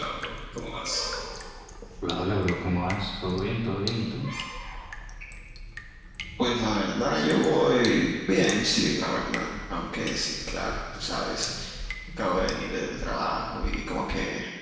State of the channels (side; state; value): both; identical; correlation 1.00